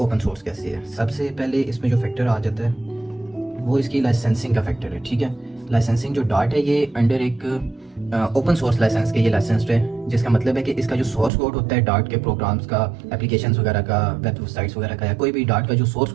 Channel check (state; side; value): drops out; left; at 11.3 s